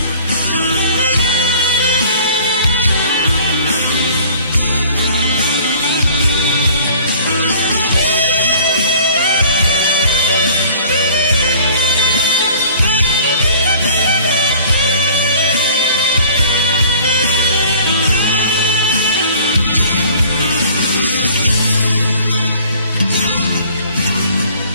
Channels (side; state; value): both; inverted; correlation -0.49